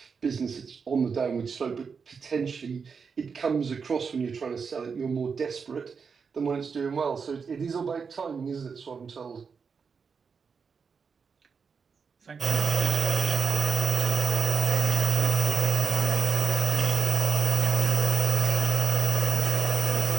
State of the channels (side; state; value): left; quieter; 5.7 dB